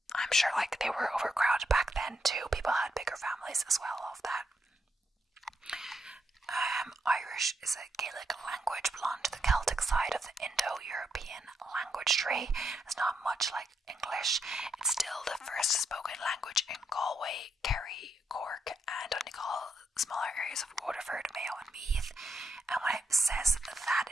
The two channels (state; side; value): normal; both; correlation 0.79